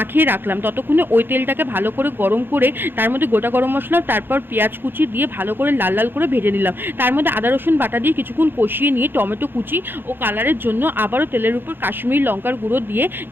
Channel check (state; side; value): late; left; 0.10 ms